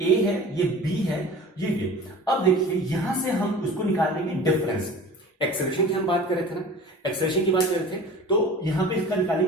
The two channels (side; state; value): both; normal; correlation 0.40